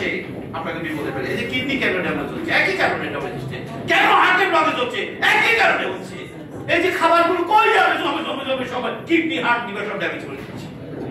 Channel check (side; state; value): both; identical; correlation 1.00